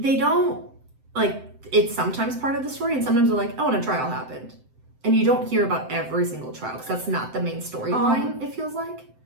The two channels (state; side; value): late; left; 7.8 ms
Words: don't like, it's sometimes part of the story and sometimes they're like, oh, and a trial happened. And you don't hear about every single trial because that's not the main storyline, it feels like.